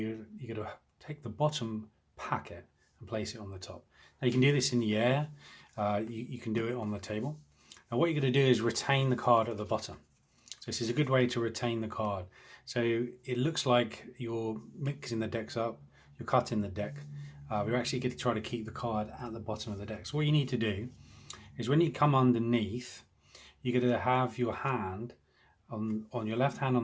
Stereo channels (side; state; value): both; identical; correlation 1.00